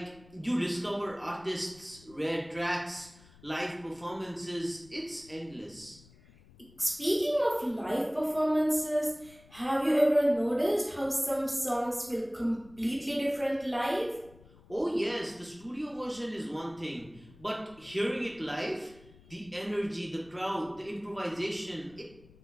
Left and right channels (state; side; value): noise; left; rumble, 24 dB below the sound